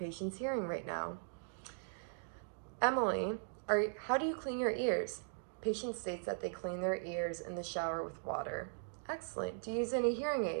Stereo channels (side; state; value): left; silent; digital silence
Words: hearing right now. Emily, how do you clean your ears? Patient states that they clean their ears in the shower with water. Excellent. Do you use any hearing